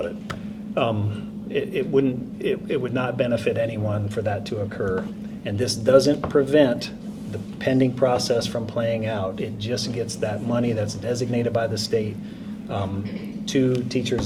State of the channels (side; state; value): both; identical; correlation 1.00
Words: it. It would not benefit anyone for that to occur. And this doesn't prevent the pending process from playing out. It just gets that money that's designated by the state to